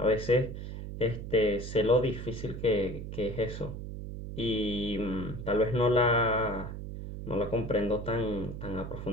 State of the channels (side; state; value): right; noise; hum, 8 dB below the sound